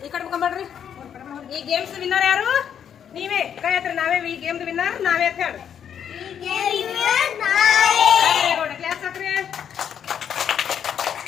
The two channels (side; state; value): right; quieter; 8.6 dB